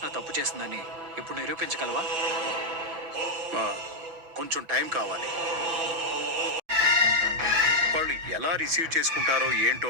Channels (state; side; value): late; left; 6.1 ms